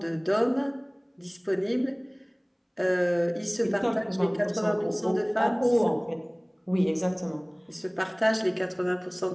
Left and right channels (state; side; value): identical; both; correlation 1.00